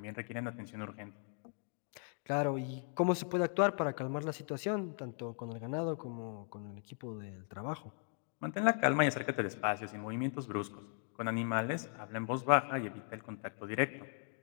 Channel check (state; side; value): silent; right; 53 dB below the other